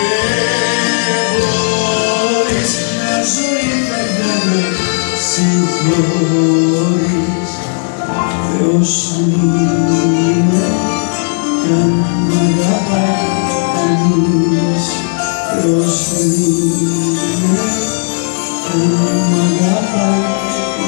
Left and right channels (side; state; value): right; silent; 64 dB below the other